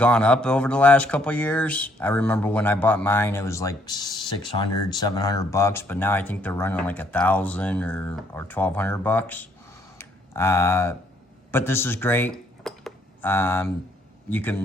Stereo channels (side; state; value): both; normal; correlation 0.68